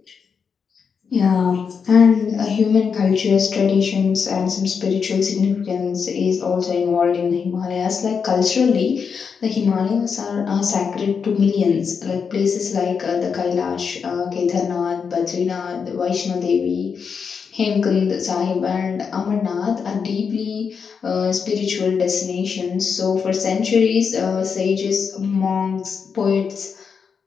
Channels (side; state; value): right; quieter; 6.1 dB